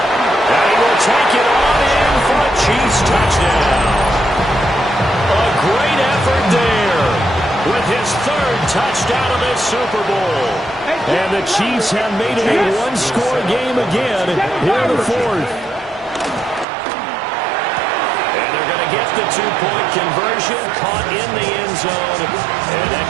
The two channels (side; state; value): left; drops out; at 16.7 s